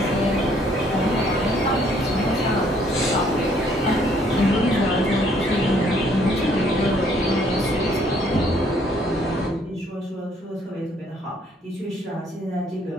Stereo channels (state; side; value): normal; both; correlation 0.64